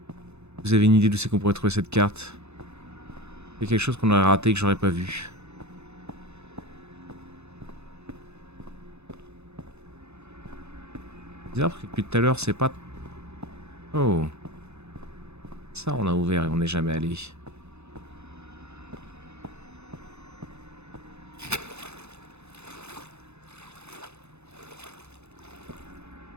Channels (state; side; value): late; left; 0.81 ms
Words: Vous avez une idée d'où c'est qu'on pourrait trouver cette carte? Il y a quelque chose qu'on aurait raté que j'aurais pas vu. Bizarre parce que depuis tout à l'heure, c'est pas... Oh. Ça, on a ouvert et on n'est jamais allé.